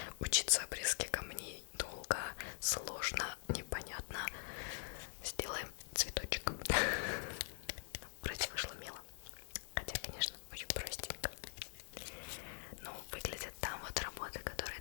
учиться обрезке камней долго, сложно, непонятно. Сделаем цветочек. Вроде вышло мило. Хотя, конечно, очень простенько. Но выглядят там вот работы, которые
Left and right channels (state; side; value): silent; right; digital silence